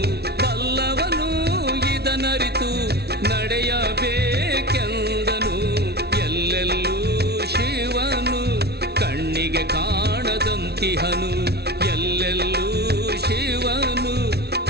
ಬಲ್ಲವನು ಇದನರಿತು ನಡೆಯಬೇಕೆಂದನು. ಎಲ್ಲೆಲ್ಲೂ ಶಿವನು ಕಣ್ಣಿಗೆ ಕಾಣದಂತಿಹನು, ಎಲ್ಲೆಲ್ಲೂ ಶಿವನು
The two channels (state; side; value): late; left; 0.48 ms